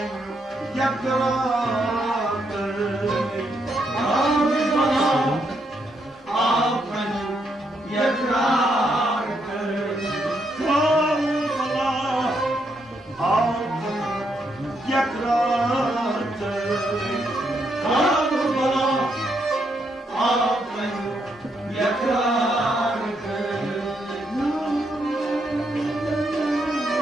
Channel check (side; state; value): both; normal; correlation 0.78